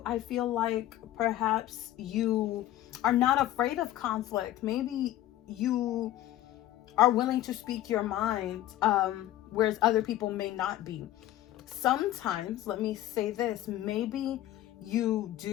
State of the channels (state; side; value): quieter; right; 13.9 dB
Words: feel like perhaps you are not afraid of conflict. Maybe you are willing to speak your mind, whereas other people may not be. Sometimes, let me say this, maybe you